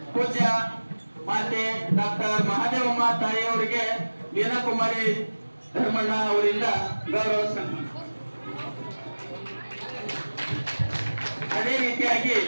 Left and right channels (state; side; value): inverted; both; correlation -1.00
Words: ಪೂಜ್ಯ ಮಾತೆ ಡಾಕ್ಟರ್ ಮಹಾದೇವಮ್ಮ ತಾಯಿಯವರಿಗೆ ಮೀನಾಕುಮಾರಿ ಧರ್ಮಣ್ಣ ಅವರಿಂದ ಗೌರವ ಸನ್ಮಾನ. ಅದೇ ರೀತಿಯಾಗಿ